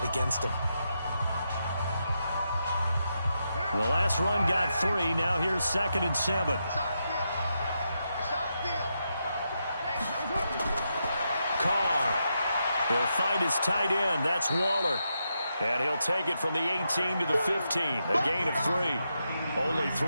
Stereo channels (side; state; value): both; inverted; correlation -0.84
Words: against them. The last run got 3. Now here's 2nd and 7. Carr. He'll find his tight end. That's Waller. And he'll take it from the 18 to the 15. A gain of 3. Only